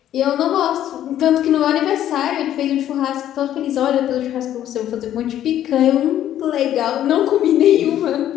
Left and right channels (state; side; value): quieter; right; 11.6 dB